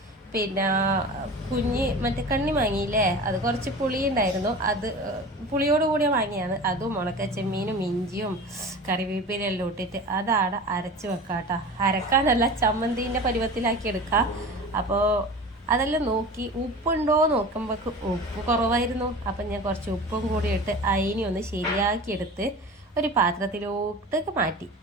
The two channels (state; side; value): normal; both; correlation 0.35